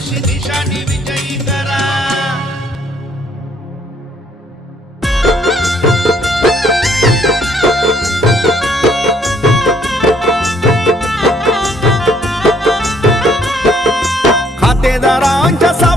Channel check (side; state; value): both; normal; correlation 0.65